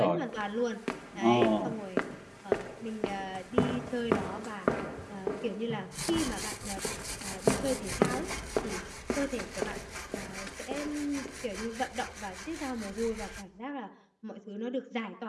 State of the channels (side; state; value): both; identical; correlation 1.00